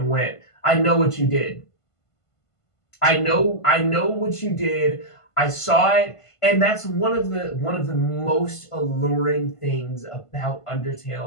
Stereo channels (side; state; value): right; late; 1.5 ms